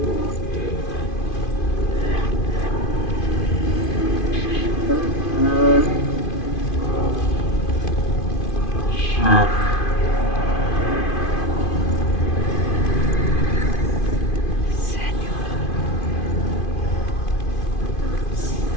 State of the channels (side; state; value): right; late; 2.5 ms